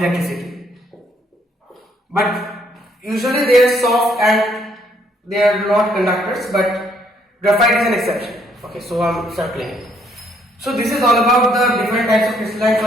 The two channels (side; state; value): both; normal; correlation 0.68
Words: But usually they are soft and they are not conductors, but graphite is an exception. Okay, so I'm circling it. So this is all about the different types of crystalline